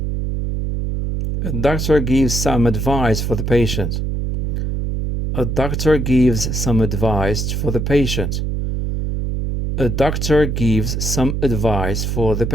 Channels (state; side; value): noise; right; hum, 1 dB below the sound